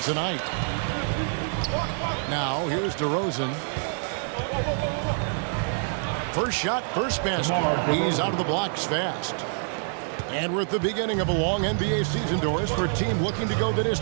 tonight. Now, here's DeRozan. First shot, first basket. He's out of the blocks fast. And we're at the beginning of a long NBA season, Doris, for a team looking to go the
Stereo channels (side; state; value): left; silent; 61 dB below the other